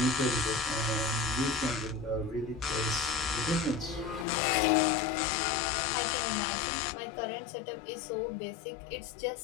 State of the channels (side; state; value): right; drops out; at 4.2 s